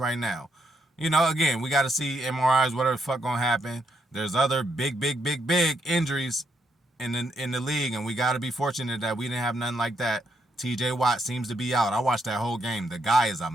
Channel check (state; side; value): normal; both; correlation 0.77